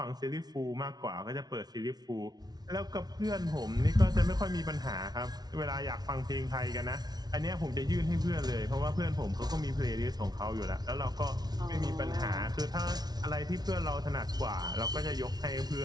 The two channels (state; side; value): late; left; 0.19 ms